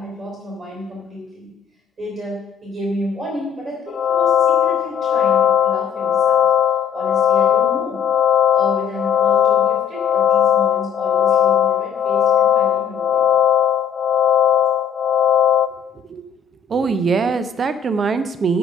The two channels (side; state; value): right; quieter; 7.3 dB